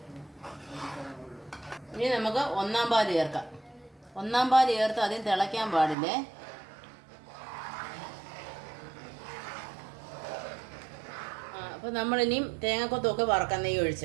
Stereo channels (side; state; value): left; drops out; at 6.0 s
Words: ഇനി നമുക്ക് 1-ാം പാല് ചേർക്കാം. 1-ാം പാല് ചേർത്ത് അതിന് തിളയ്ക്കാൻ പാടില്ലേ. അപ്പോൾ നമ്മളിനിയും തേങ്ങാക്കൊത്തൊക്കെ വറക്കാം.